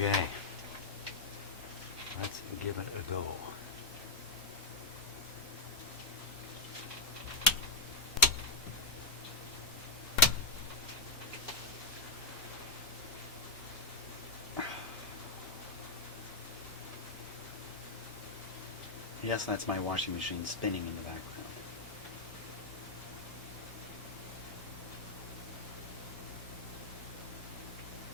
Let's give it a go. Yes, that's my washing machine spinning in the background.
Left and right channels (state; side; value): quieter; right; 3.2 dB